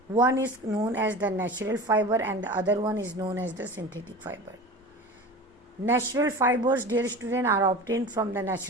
One is known as the natural fiber and the other one is known as the synthetic fiber. Natural fibers, dear student, are obtained from the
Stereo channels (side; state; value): both; normal; correlation 0.34